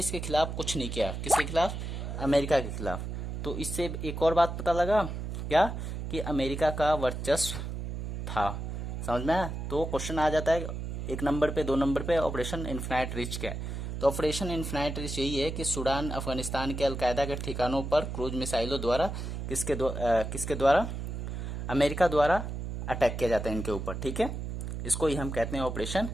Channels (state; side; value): noise; right; hum, 5 dB below the sound